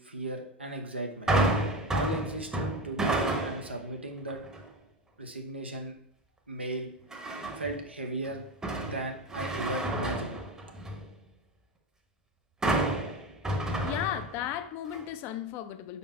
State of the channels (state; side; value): normal; both; correlation 0.22